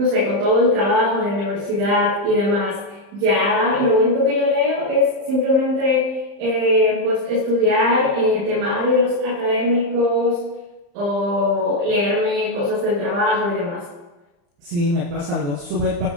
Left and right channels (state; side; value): late; left; 35 ms